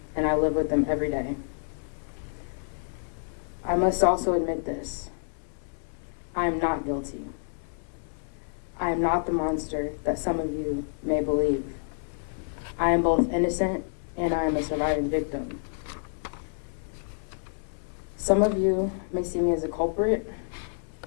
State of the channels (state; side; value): silent; right; digital silence